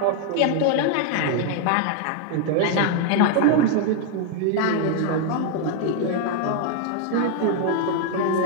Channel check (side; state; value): both; different; correlation 0.00